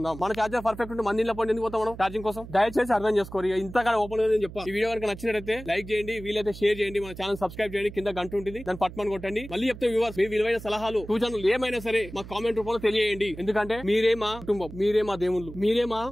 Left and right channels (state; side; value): noise; right; hum, 14 dB below the sound